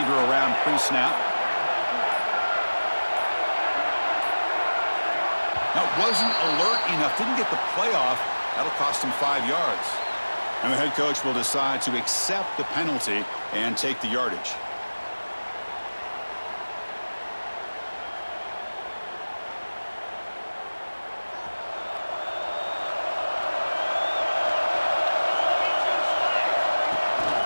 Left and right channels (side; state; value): both; inverted; correlation -1.00